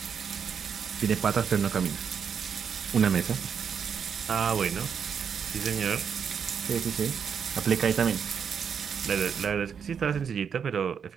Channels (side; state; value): left; quieter; 7.1 dB